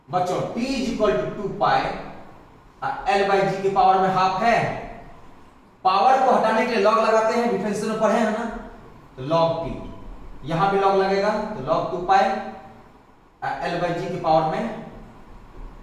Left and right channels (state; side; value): identical; both; correlation 1.00